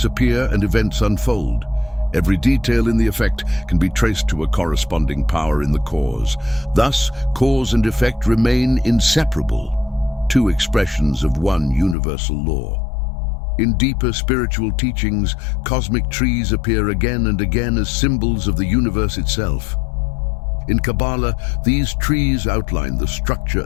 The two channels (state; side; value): drops out; right; at 12.0 s